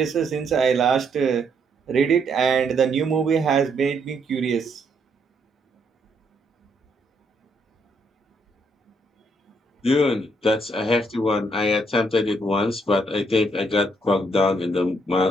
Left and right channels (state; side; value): normal; both; correlation 0.73